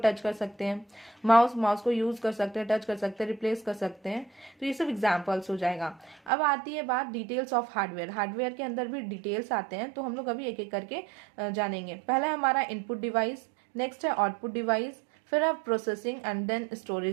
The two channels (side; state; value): left; drops out; at 6.3 s